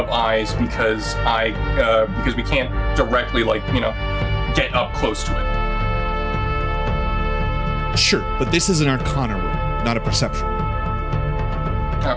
eyes because we can't directly get up close to it. Sure, but this is an Arcana roll, not a perception roll. Okay.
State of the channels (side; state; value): both; identical; correlation 1.00